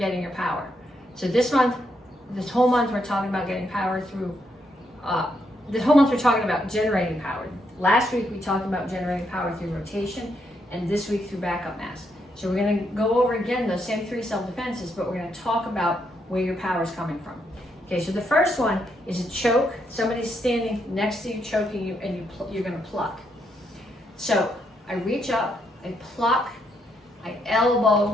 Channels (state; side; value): normal; both; correlation 0.77